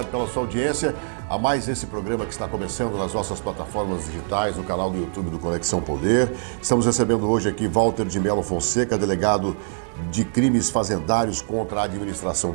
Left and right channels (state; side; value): silent; left; digital silence